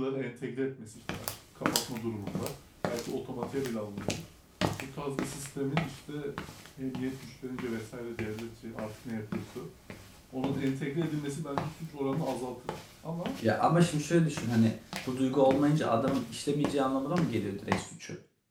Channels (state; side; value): identical; both; correlation 1.00